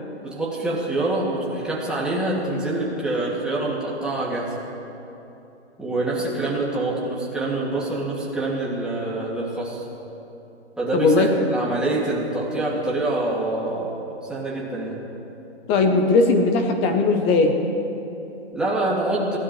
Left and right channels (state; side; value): normal; both; correlation 0.27